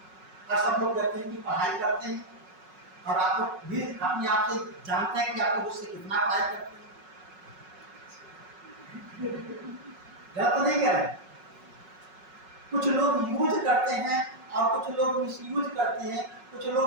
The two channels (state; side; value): late; left; 5.4 ms